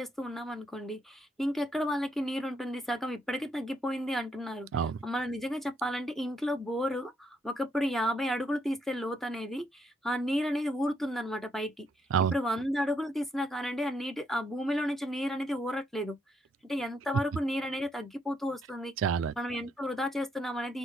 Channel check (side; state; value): both; normal; correlation 0.74